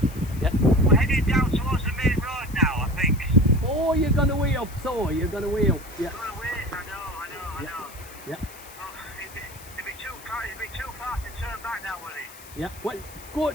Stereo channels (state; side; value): noise; left; hiss, 18 dB below the sound